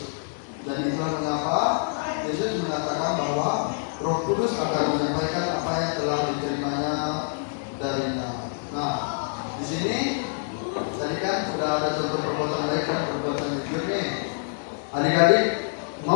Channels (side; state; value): right; silent; digital silence